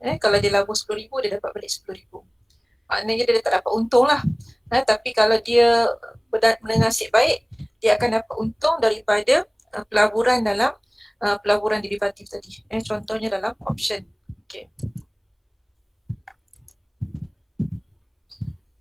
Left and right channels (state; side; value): identical; both; correlation 1.00